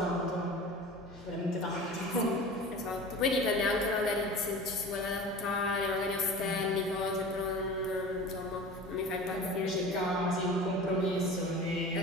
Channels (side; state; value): both; normal; correlation 0.37